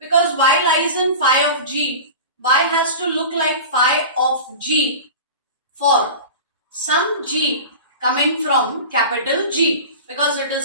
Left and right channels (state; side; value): inverted; both; correlation -0.33